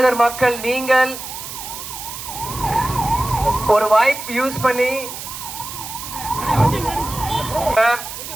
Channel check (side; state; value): right; noise; hiss, 9 dB below the sound